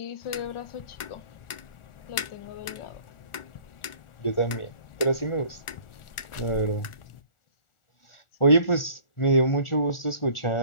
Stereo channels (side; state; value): right; late; 1.4 ms